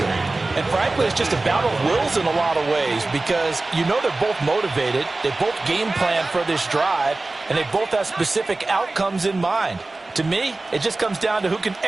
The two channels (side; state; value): left; quieter; 3.2 dB